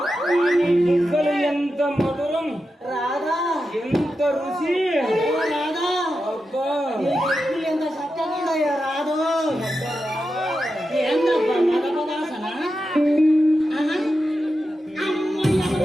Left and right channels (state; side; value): normal; both; correlation 0.89